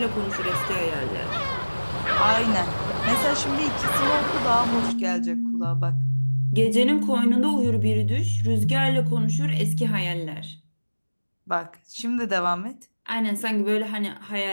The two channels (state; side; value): inverted; both; correlation -1.00